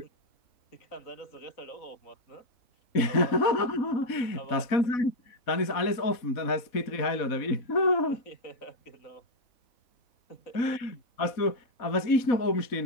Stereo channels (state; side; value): late; right; 4.1 ms